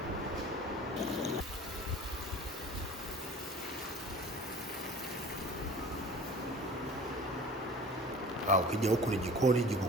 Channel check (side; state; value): both; normal; correlation 0.42